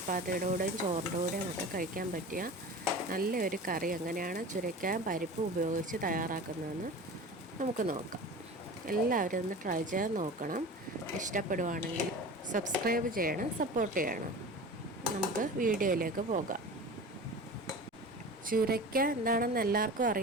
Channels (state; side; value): normal; both; correlation 0.35